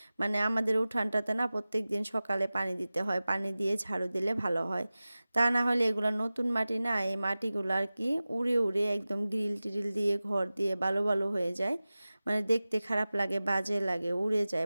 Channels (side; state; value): both; inverted; correlation -0.97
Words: মানে আমাদের উঠানটাতে না প্রত্যেক দিন সকালে পানি দিতে হয়, পানি দিয়ে ঝাড়ু দিলে ভালো হয়, তা না হলে এগুলো নতুন মাটি না, এই মাটিগুলো আর কি উড়ে উড়ে একদম গ্রিল টিরিল দিয়ে ঘর দিয়ে বালু বালু হয়ে যায়, মানে দেখতে খারাপ লাগে, বাজে লাগে, উড়ে যায়